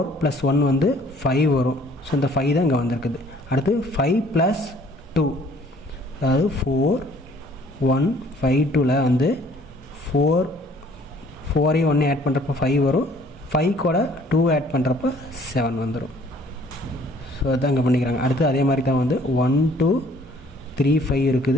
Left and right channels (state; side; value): normal; both; correlation 0.58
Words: + 1 வந்து 5 வரும். ஸோ இந்த 5 தான் இங்கே வந்திருக்குது. அடுத்து 5 + 2, அதாவது 4 1 5 2ல் வந்து 4ஐயும் 1 ஆட் பண்ணுறப்ப 5 வரும். 5 கூட 2 ஆட் பண்ணுறப்ப 7 வந்துடும். ஸோ அதுதான் இங்கே பண்ணிக்கிறாங்க. அடுத்து அதே மாதிரி தான் வந்து 1 2 3 5